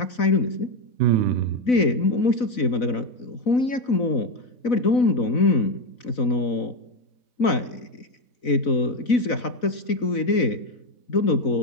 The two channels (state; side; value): late; right; 4.0 ms